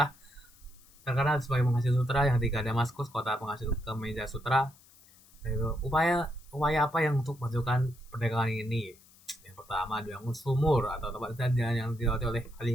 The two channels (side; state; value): left; noise; hiss, 26 dB below the sound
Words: terkenal sebagai penghasil sutra, yang ketiga Damaskus, kota penghasil kemeja sutra. Yaitu upaya apa yang untuk memajukan perdagangan ini? Yang pertama dibangun sumur atau tempat jalan yang dilewati oleh